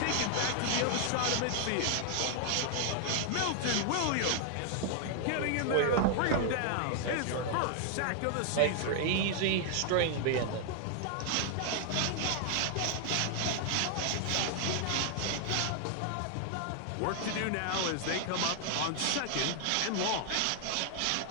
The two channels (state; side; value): different; both; correlation 0.00